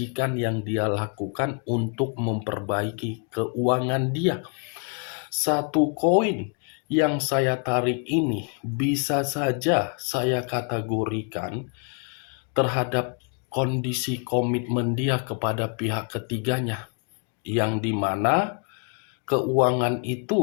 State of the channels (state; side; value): quieter; right; 37.4 dB